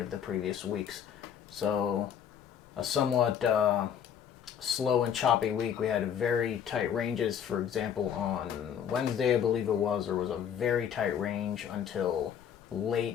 the previous weeks. So a somewhat slow and choppy week. We had very tight ranges. For example, on Wednesday, I believe it was, there was a very tight range until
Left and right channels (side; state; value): right; quieter; 8.6 dB